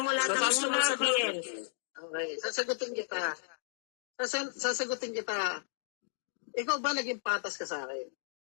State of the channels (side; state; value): right; silent; digital silence